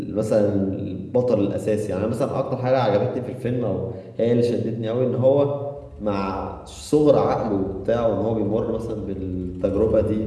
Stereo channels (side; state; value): both; identical; correlation 1.00